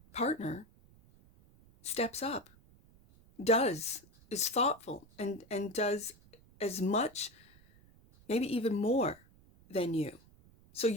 partner steps up, is thoughtful, and does as much, maybe even more than you. So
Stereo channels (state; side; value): noise; right; rumble, 27 dB below the sound